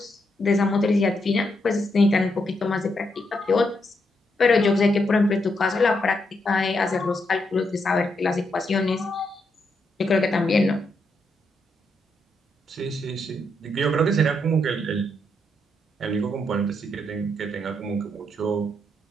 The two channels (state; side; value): normal; both; correlation 0.80